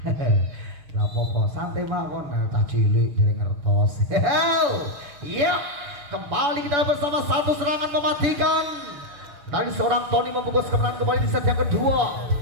nggak apa-apa, santai mawon, tak cilik dari ngertos. Iya, kembali kita bersama satu serangan mematikan dari seorang Tony membungkus kemenangan kembali di set yang kedua.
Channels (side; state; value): left; late; 7.0 ms